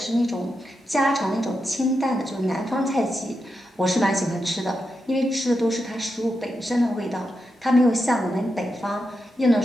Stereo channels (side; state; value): both; normal; correlation 0.87